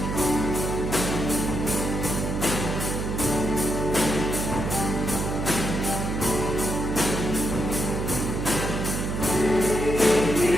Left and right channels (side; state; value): right; noise; hum, 2 dB below the sound